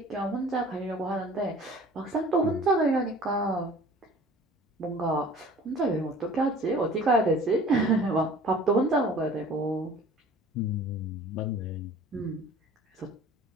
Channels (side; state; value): both; normal; correlation 0.47